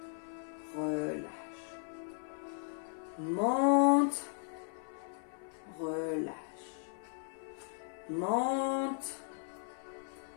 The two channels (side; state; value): right; silent; 53 dB below the other